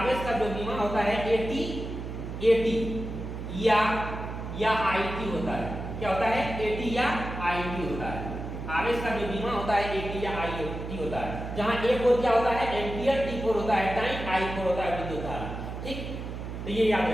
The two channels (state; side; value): noise; right; hum, 7 dB below the sound